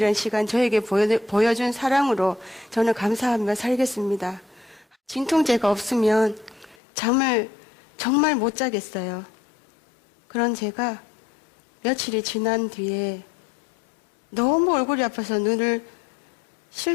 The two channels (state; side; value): drops out; right; at 6.8 s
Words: 시간 저에게 보여준 사랑으로 저는 감사하며 살겠습니다. 진통제가 없으면 잠을 정말 못 자겠어요. 그런 제가 며칠이 지난 뒤에 너무 얼굴이 아파서